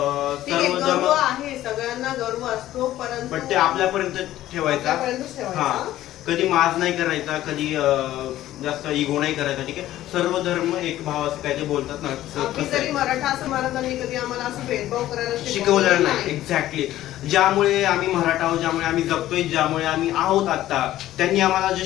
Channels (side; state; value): right; quieter; 14.0 dB